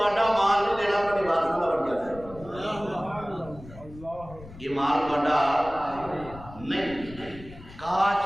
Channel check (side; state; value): left; noise; rumble, 17 dB below the sound